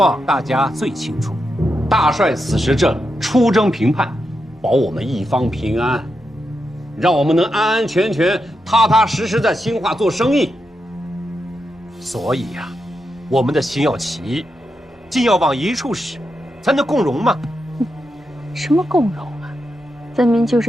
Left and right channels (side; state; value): both; normal; correlation 0.86